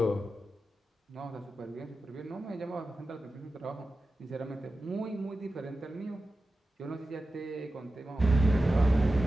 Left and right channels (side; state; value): both; normal; correlation 0.93